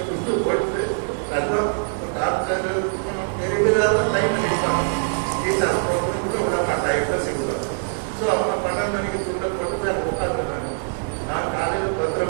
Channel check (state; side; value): silent; left; 63 dB below the other